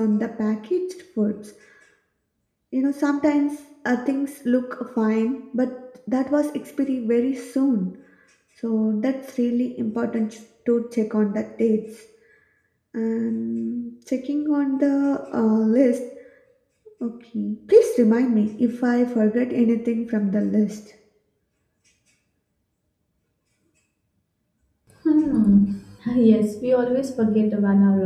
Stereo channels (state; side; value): identical; both; correlation 1.00